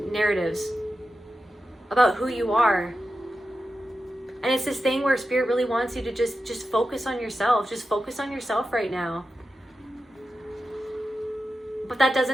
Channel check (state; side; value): normal; both; correlation 0.91